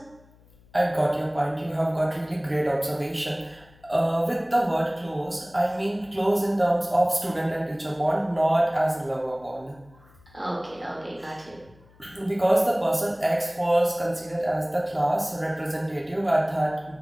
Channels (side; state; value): left; noise; hum, 27 dB below the sound